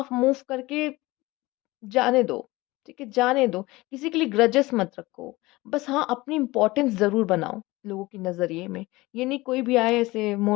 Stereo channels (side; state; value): right; quieter; 20.7 dB